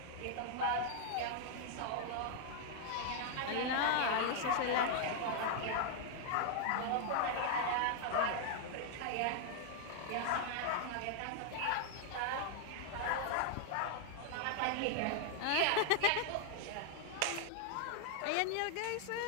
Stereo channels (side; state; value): both; different; correlation 0.00